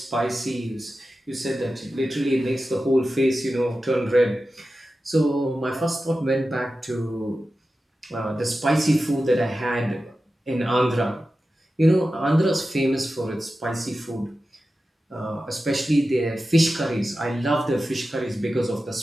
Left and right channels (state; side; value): normal; both; correlation 0.93